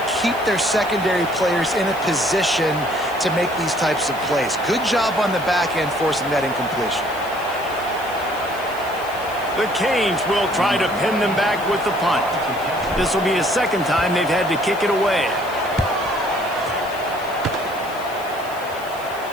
keep their secondary players in a position to make these types of plays. Good job on the back end forcing that incompletion. The Canes will try to pin them back with the punt. This will be the 2nd time they've had to kick it away.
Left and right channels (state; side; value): noise; left; hiss, 18 dB below the sound